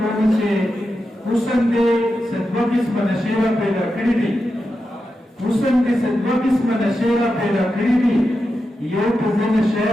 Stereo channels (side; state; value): both; normal; correlation 0.89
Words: چې حسن دې څه دوه قسمه نشې را پیدا کړي دي، حسن دې څه دوه قسمه نشې را پیدا کړي دي، یو په زه نشه